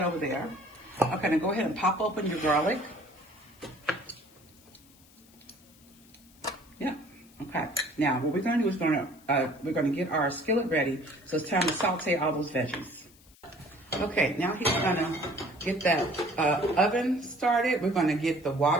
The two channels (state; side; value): noise; left; hiss, 27 dB below the sound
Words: over there. Okay, now go ahead and pop open your garlic. Yeah. Okay. Now what we're gonna do is we're gonna get our skillet ready. So it's time to saute all those veggies. Okay, now he's gonna get that oven started. We're gonna get the